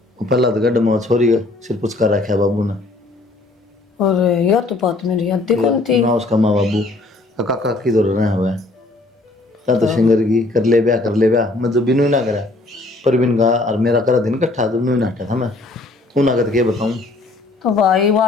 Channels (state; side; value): quieter; right; 3.0 dB